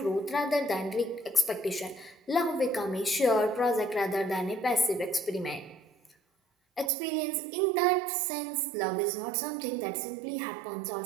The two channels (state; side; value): drops out; left; at 6.9 s